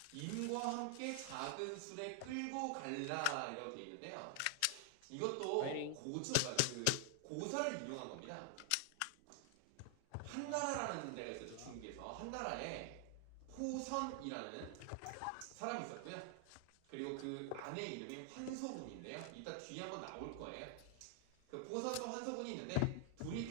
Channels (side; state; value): both; different; correlation 0.00